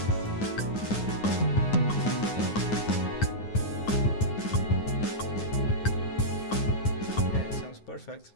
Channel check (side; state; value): right; late; 9.5 ms